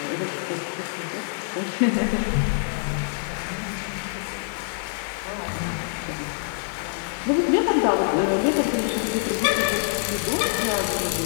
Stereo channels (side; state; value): right; silent; digital silence